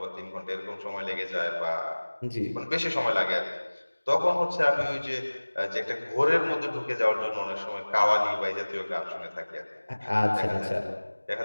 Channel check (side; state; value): both; inverted; correlation -1.00